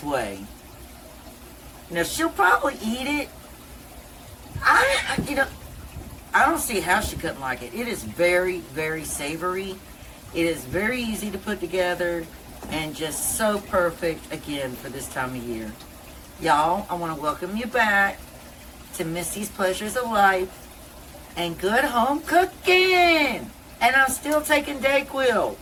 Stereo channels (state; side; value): identical; both; correlation 1.00